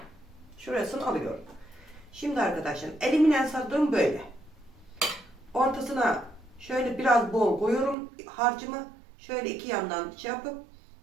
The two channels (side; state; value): left; drops out; at 8.0 s